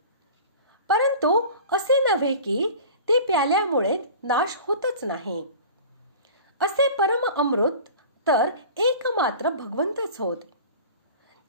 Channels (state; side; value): inverted; both; correlation -0.39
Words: परंतु असे नव्हे की ते प्याल्यामुळे नाश होतच नाही. असे परम अमृत तर एकमात्र भगवंतच होत.